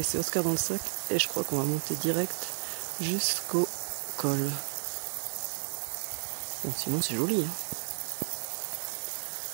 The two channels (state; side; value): silent; left; digital silence